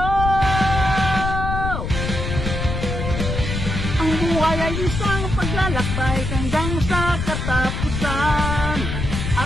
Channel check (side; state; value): left; noise; rumble, 3 dB below the sound